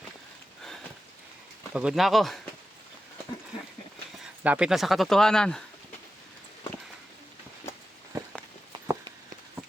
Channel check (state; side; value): normal; both; correlation 0.92